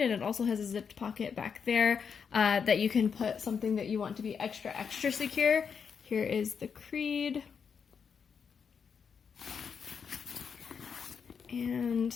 and it also has a zipped pocket back there that you can put something that you want to be extra secure. Here is the creed. And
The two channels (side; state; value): right; quieter; 6.5 dB